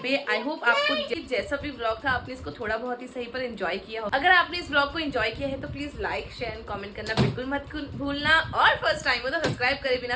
पे। आई होप आपको जैसा भी व्लॉग था आपने इसको थोड़ा बहुत ही सही पर एंजॉय किया हो। अगर आपने इस व्लॉग को एंजॉय किया है तो please like, share and comment करना बिल्कुल मत भूलना, और फर्स्ट टाइम हो तो सब्सक्राइब करे बिना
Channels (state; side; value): identical; both; correlation 1.00